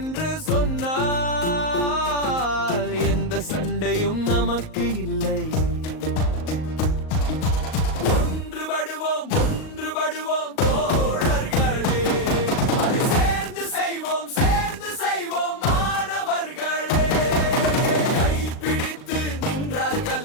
சொன்னால் எந்த சண்டையும் நமக்கு இல்லை. ஒன்றுபடுவோம் தோழர்களே, அதை சேர்ந்து செய்வோம் மாணவர்களே. கைப்பிடித்து நின்றால்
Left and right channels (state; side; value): late; right; 38 ms